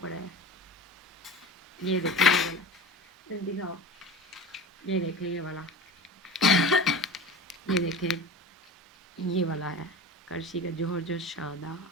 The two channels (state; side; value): normal; both; correlation 0.33